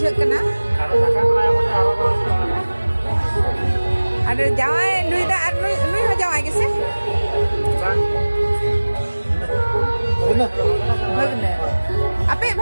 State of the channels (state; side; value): inverted; both; correlation -1.00